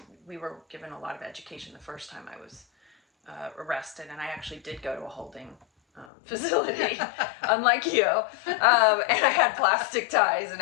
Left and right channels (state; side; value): drops out; right; at 6.1 s